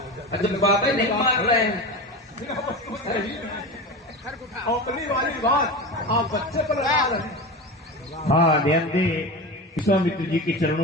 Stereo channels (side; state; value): both; normal; correlation 0.27